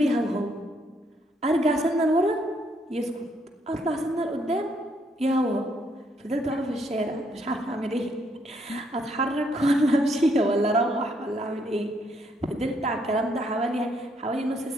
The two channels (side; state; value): both; normal; correlation 0.72